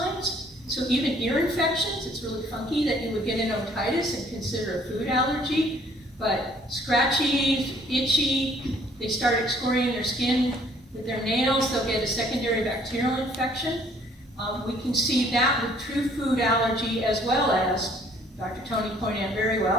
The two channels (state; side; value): normal; both; correlation 0.60